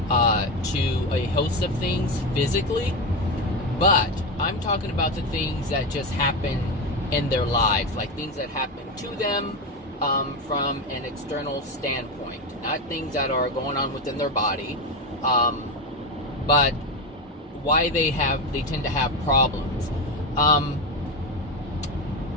a host of things physically, but I'm talking about the things that just happen in their lives, like things that happen to them from an external standpoint, not things that are going on within their body, but why they tend to have problems.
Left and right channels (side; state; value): both; normal; correlation 0.15